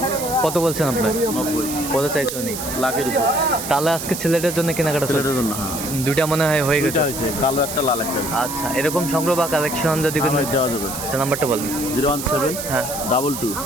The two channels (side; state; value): right; noise; hiss, 7 dB below the sound